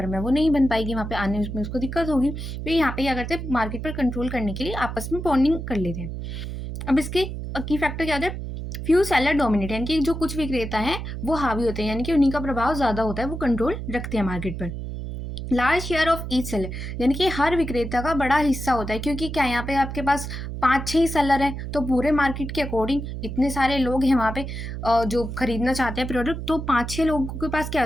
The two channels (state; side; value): noise; right; hum, 6 dB below the sound